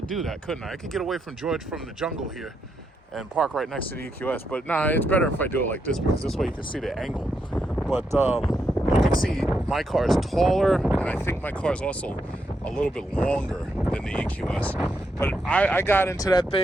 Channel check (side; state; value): both; normal; correlation 0.81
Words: do that, couldn't I? I could get away from George from the jungle here and park right next to the EQS. But nah, it's better if I do it like this because this way you can see the angle. But you can see my car is taller, and I think my car is also a little bit longer than the EQS. But I got into that